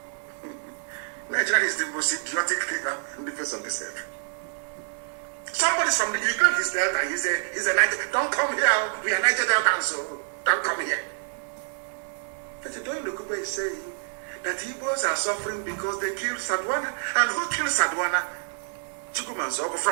Nigeria is the most idiotic thing in the face of this earth. Somebody's from the Ukraine, he's Delta, he's a Niger. Don't come here, we are Niger Delta, so don't come here. But Doyin Okupe is saying that Igbos are suffering because they killed Sadwana. And who killed Sadwana? Chukwumanzogu.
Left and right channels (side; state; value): left; silent; digital silence